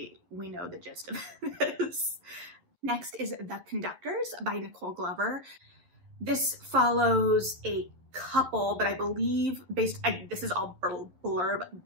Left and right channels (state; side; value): late; left; 11 ms